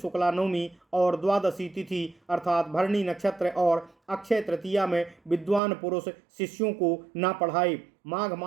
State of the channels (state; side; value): drops out; left; at 5.6 s